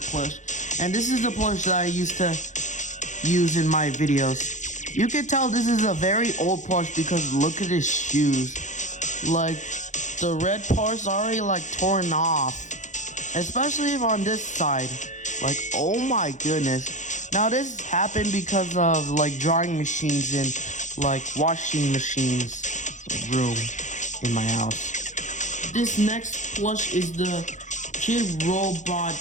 plush. And this is the plush that I used to use in my videos. You can tell this is a very old plush because look at his shoes. Like, the red part's already like torn off, especially on this side. Like, oh my goodness. Now this happened because of like drying machines and like washing machines room in my house. This next plush is the Kid Robot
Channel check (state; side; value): late; right; 0.35 ms